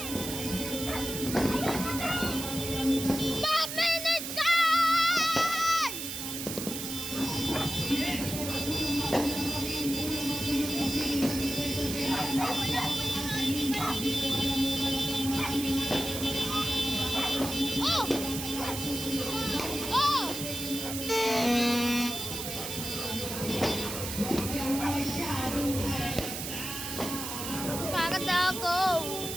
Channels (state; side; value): noise; right; hiss, 6 dB below the sound